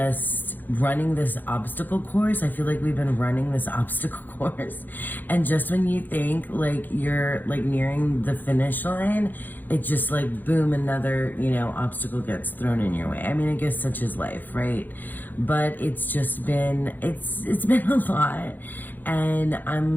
running this obstacle course. I feel like we've been running this obstacle course, and just when you think like you're like nearing the finish line, it just like boom, another obstacle gets thrown in your way. I mean, I guess such is life, right? But it's just been it's been a lot, and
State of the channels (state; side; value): late; right; 0.087 ms